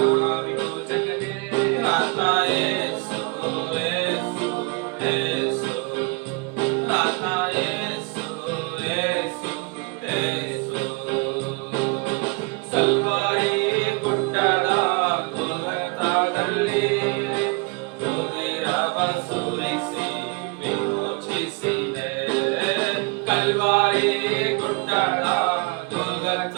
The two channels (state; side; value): quieter; left; 29.5 dB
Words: ಆತ ಯೇಸು, ಯೇಸು. ಸುರಿಸಿ ವಿಮೋಚಿಸಿದೆ. ಕಲ್ವಾರಿ ಗುಡ್ಡದ